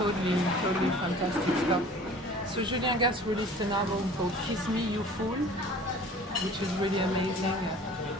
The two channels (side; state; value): both; normal; correlation 0.46